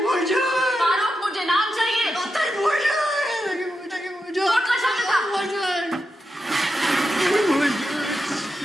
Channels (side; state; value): both; normal; correlation 0.87